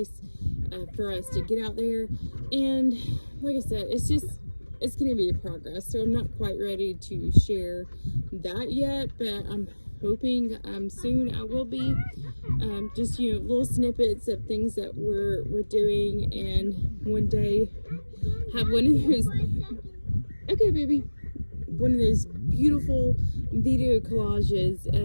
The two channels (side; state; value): both; inverted; correlation -1.00